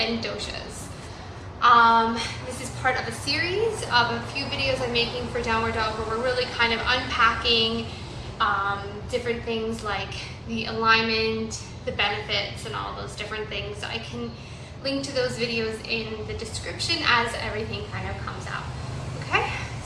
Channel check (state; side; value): identical; both; correlation 1.00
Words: doshas. This is part of a series of a few videos I'm making for Downward Dog where we're really kind of unpacking different things like the alignment, the benefits, and all those different things. So I can link to those videos in the description as everything kind of comes out. Okay,